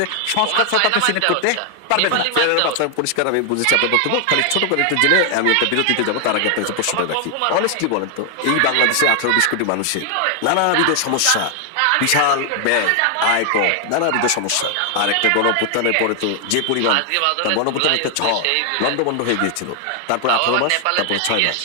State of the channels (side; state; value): both; different; correlation 0.00